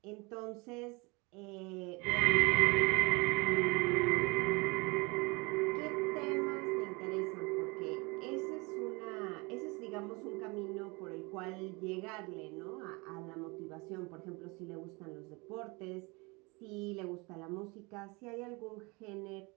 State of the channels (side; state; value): left; quieter; 27.0 dB